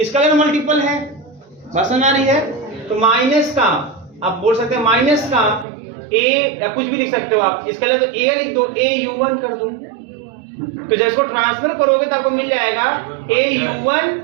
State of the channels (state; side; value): drops out; left; at 5.7 s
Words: multiple है। बात समझ आ रही है? तो माइनस का आप बोल सकते हैं, माइनस का A या कुछ भी लिख सकते हो आप, स्केलर तो A लिख दो, A U1 कर दो। तो जब इसको ट्रांसफर करोगे तो आपको मिल जाएगा A U1